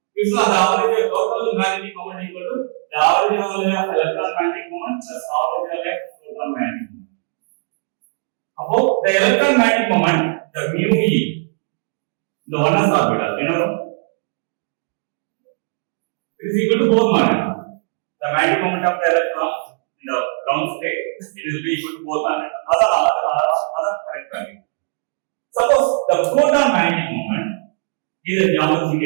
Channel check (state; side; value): silent; left; 64 dB below the other